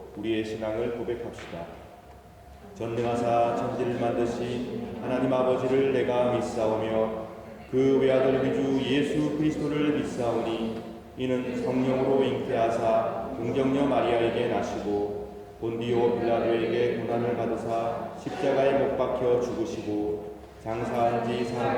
우리의 신앙을 고백합시다. 전능하사 천지를 만드신 하나님 아버지를 내가 믿사오며 그 외아들 우리 주 예수 그리스도를 믿사오니 이는 성령으로 잉태하사 동정녀 마리아에게 나시고 본디오 빌라도에게 고난을 받으사 십자가에 못 박혀 죽으시고 장사한 지 사흘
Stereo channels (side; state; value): both; identical; correlation 1.00